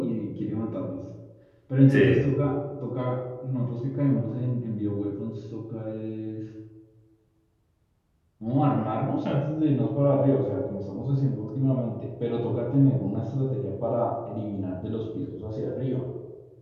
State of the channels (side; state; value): both; identical; correlation 1.00